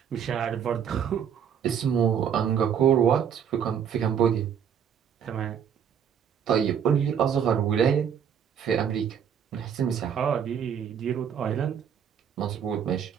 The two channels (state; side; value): quieter; left; 8.1 dB